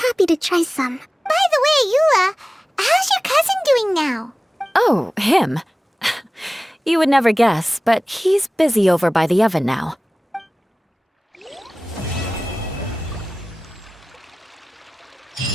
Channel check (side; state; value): both; normal; correlation 0.97